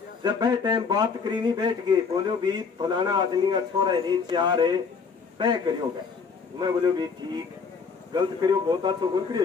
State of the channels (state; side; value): quieter; right; 5.4 dB